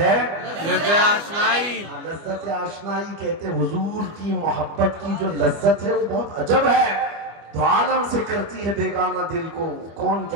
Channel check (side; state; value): left; late; 25 ms